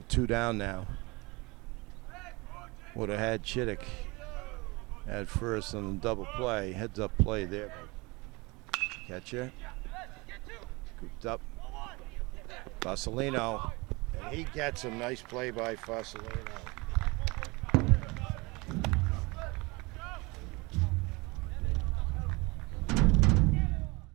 2 down now. Would have had Chittick at first on the double play. Heads up play there. Catcher. Scooped up. Fasolino. And he gets him. Nice play by Fasolino.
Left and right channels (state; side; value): quieter; left; 25.3 dB